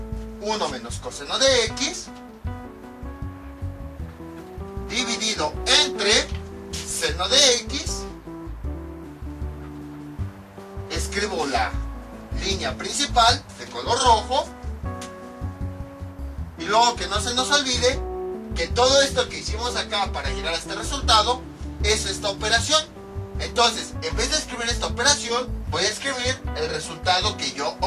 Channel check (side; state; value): both; identical; correlation 1.00